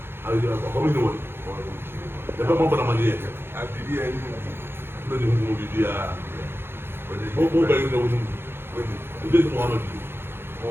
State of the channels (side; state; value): left; late; 0.11 ms